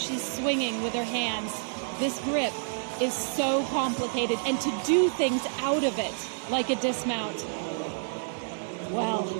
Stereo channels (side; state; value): left; silent; digital silence